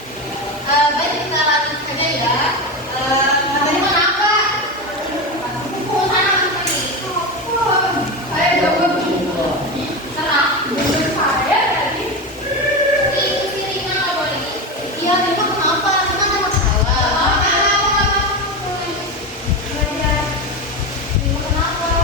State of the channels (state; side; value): normal; both; correlation 0.19